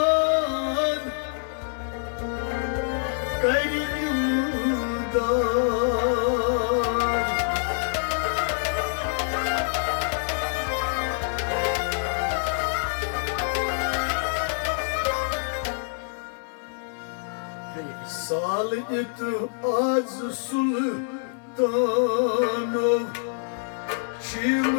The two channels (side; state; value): right; silent; digital silence